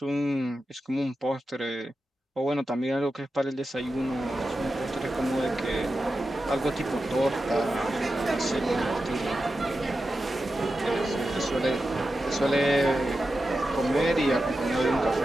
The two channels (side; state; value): both; normal; correlation 0.91